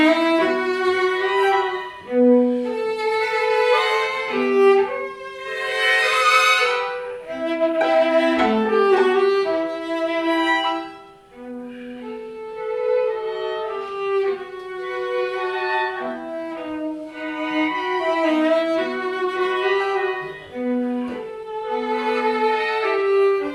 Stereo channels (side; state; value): both; identical; correlation 1.00